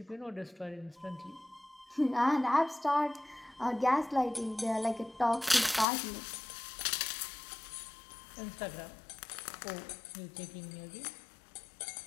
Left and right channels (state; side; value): drops out; right; at 5.9 s